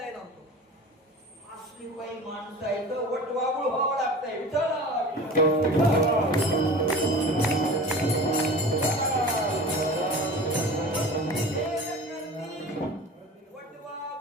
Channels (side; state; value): both; normal; correlation 0.37